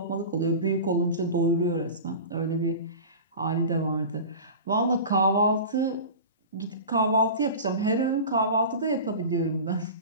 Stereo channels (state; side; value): inverted; both; correlation -0.33